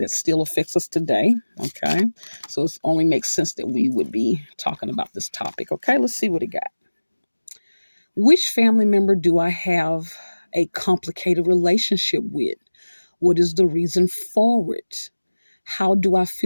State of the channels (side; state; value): both; inverted; correlation -1.00